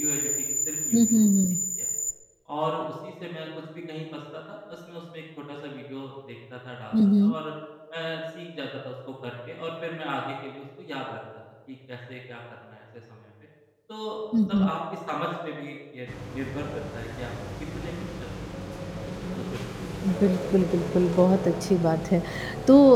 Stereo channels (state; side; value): identical; both; correlation 1.00